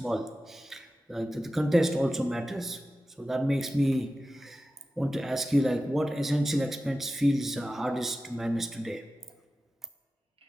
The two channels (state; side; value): normal; both; correlation 0.94